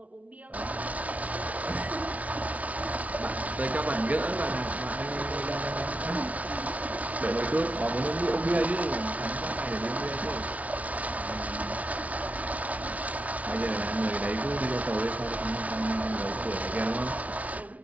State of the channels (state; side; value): late; left; 0.069 ms